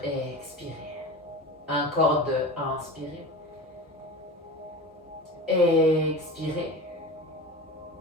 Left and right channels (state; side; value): normal; both; correlation 0.31